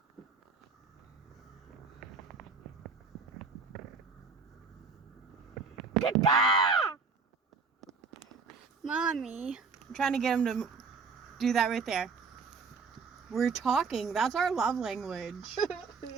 Mommy. I'm trying to get him to do that right there. We're talking. That's our love language.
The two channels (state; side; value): quieter; left; 4.8 dB